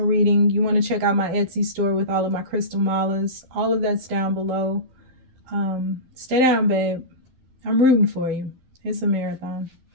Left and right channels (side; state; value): left; late; 12 ms